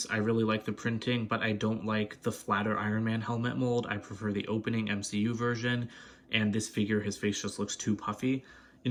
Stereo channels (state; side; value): identical; both; correlation 1.00